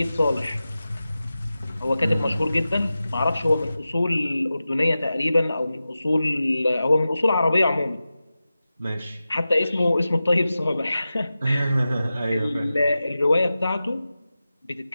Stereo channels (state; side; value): inverted; both; correlation -0.94